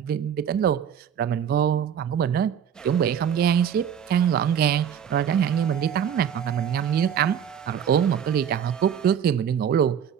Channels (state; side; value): quieter; left; 8.4 dB